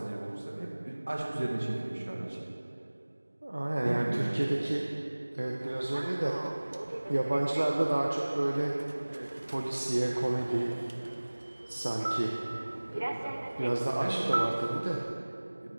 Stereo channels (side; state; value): both; inverted; correlation -1.00